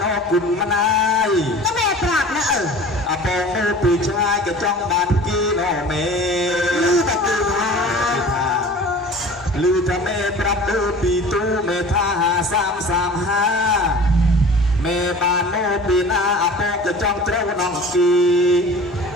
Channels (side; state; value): both; normal; correlation 0.41